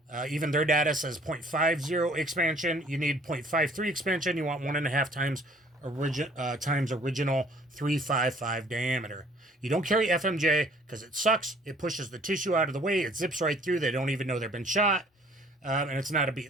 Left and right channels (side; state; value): both; normal; correlation 0.56